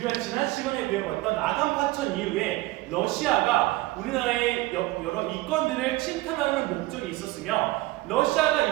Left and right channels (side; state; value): left; quieter; 19.3 dB